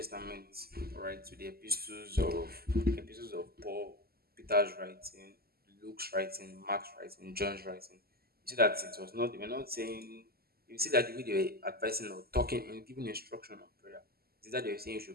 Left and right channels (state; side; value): late; left; 0.45 ms